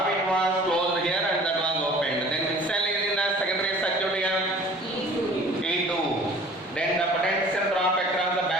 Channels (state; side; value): normal; both; correlation 0.48